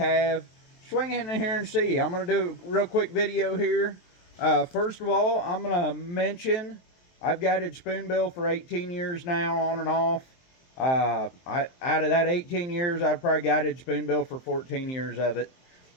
Swing in here and see. I'm going to do a real quick video here. First of all, I'm going to mention I've guided spoonbill for 18 years now, on and off. Out of that 18 years, I've probably guided spoonbill for 14 years of it.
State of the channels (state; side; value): late; right; 23 ms